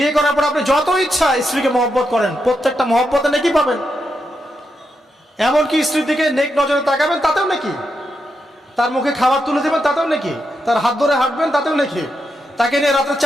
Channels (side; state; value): both; normal; correlation 0.84